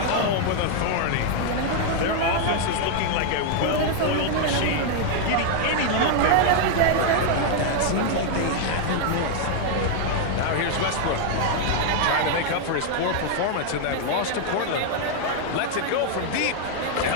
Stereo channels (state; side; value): different; both; correlation 0.00